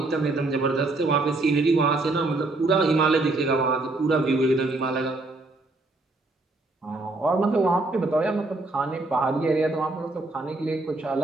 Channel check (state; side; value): quieter; left; 3.1 dB